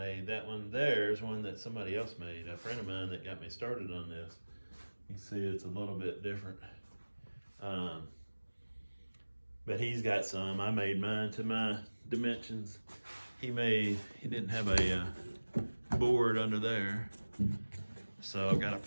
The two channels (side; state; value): both; inverted; correlation -1.00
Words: That one there is one that somebody else made, a friend of mine that got me started on this. You can see it's a little bit different. But he's got some. I made mine to my dimensions. He didn't have a board under there, so I've got to